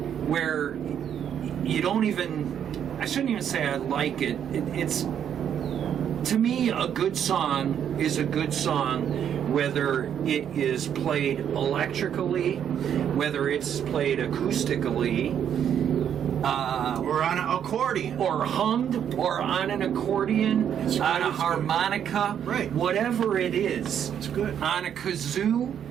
where you don't even, I shouldn't even say I like it. It's, to me, a good song is a good song, whether it is played electrically, whether it's played acoustically, or on an accordion. or hummed, or on an accordion, on a harmonica, right? Whatever it is, it's good. On a kazoo,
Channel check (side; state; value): left; quieter; 9.0 dB